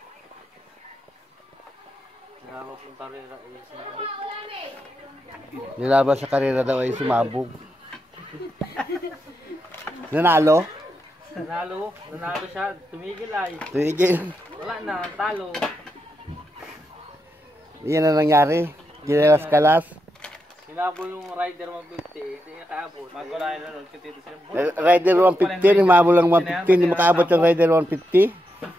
Nilaban sa karera daw ay sumabog. Nanalo? Nanalo siya. Tumigil ay. Tumigil. Wala na, talo. Iyan na nangyari. Ginelas-kalas. Sinabol yung Rider 150, hindi nakaabot. Magkulayan na nun, kitito siya. Rider 150, umabol lang 150, hindi makaabot yung Rider 150.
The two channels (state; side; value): normal; both; correlation 0.84